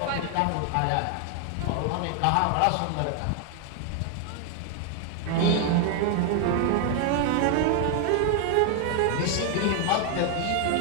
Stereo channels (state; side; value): different; both; correlation 0.00